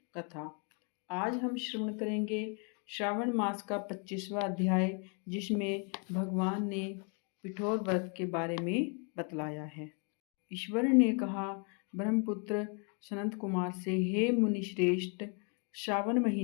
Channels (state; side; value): quieter; right; 38.3 dB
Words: कथा। आज हम श्रवण करेंगे श्रावण मास का 25वां अध्याय, जिसमें भगवान ने पिठोर व्रत के बारे में बतलाया है। ईश्वर ने कहा ब्रह्मपुत्र सनत कुमार से, हे मुनिश्रेष्ठ, श्रावण